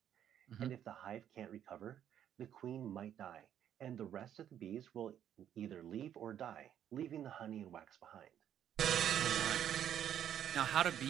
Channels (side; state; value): left; quieter; 10.1 dB